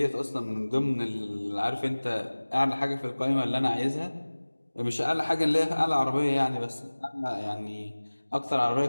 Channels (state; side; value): inverted; both; correlation -1.00